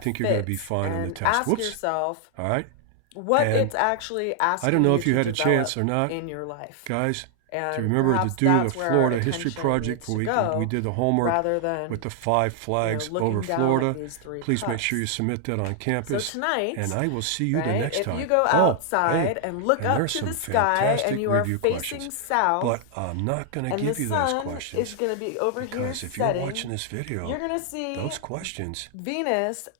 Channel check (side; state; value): both; different; correlation 0.00